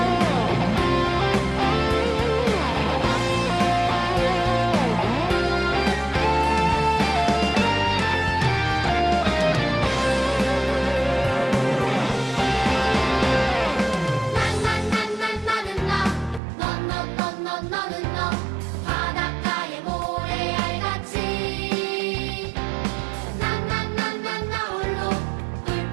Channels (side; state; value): left; drops out; at 16.4 s